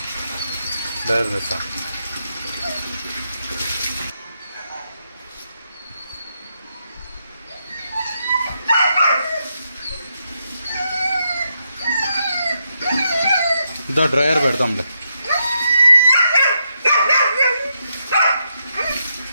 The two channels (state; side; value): inverted; both; correlation -0.82